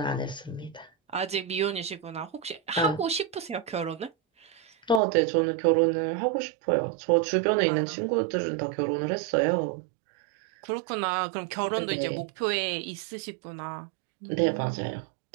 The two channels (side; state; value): left; drops out; at 5.0 s